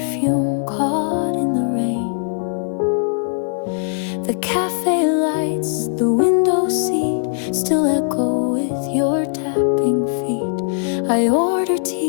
caught in the rain. The cafe lights, the window seat still echo with your tapping feet. I order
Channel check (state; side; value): silent; right; 66 dB below the other